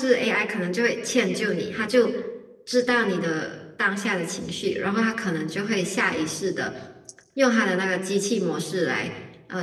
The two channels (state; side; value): identical; both; correlation 1.00